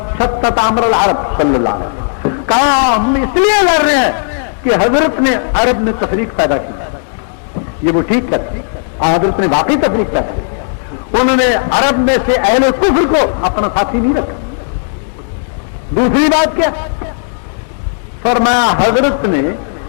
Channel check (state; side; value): silent; right; digital silence